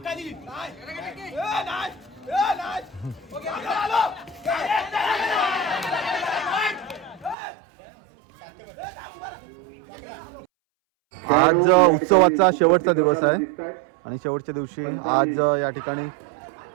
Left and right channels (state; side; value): drops out; left; at 7.4 s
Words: आज उत्सवाचा शेवटचा दिवस आहे आणि शेवटच्या दिवशी आज या ठिकाणी